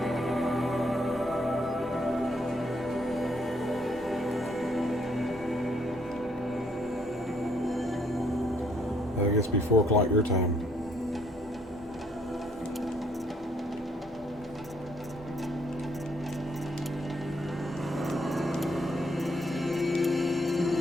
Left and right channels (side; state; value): both; normal; correlation 0.69